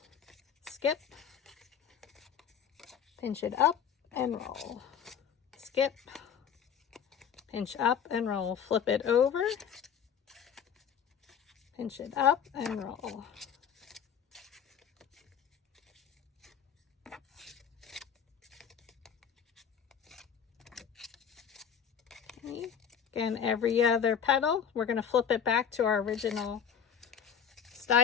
Skip, pinch it up and roll. Skip, pinch up and roll. Flip it over, pinch it up and roll. Okay. Again, every other petal, we're going to flip it back to our original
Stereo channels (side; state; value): right; quieter; 7.9 dB